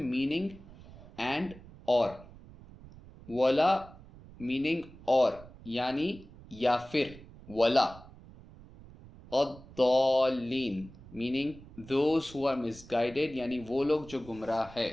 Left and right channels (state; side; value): noise; right; rumble, 19 dB below the sound